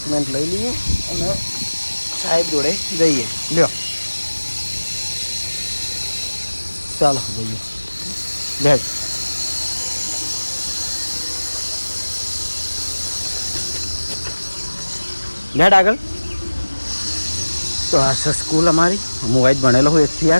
લઈ લઈએ અને સાહેબ જોડે જઈએ. લ્યો ચાલો જઈએ. બેઠ બેઠ આગળ. તો આ છે સ્કૂલ અમારી. હું વાઈટ ભણેલો હું 1 થી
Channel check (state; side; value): inverted; both; correlation -1.00